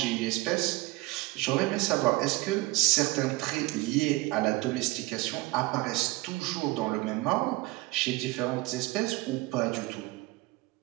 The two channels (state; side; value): quieter; left; 20.9 dB